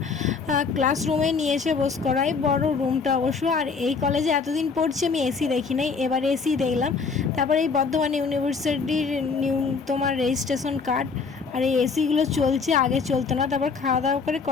ক্লাসরুমে নিয়ে এসে বস করাই, বড় রুমটা অবশ্য। আর এই কলেজে এতদিন পড়ছি আমি এসি দেখি নাই, এবার এসি দেখলাম। তারপরে এই বর্ধমান ইউনিভার্সিটির নিউ তোমার রেজিস্ট্রেশন কার্ড, আর এই এসিগুলো চলছে, আগে চলতো না। তারপর খাওয়া দাওয়া করে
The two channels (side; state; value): right; quieter; 5.0 dB